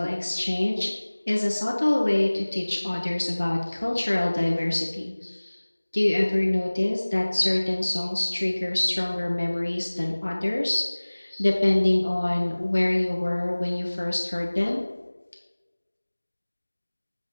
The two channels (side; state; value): both; inverted; correlation -1.00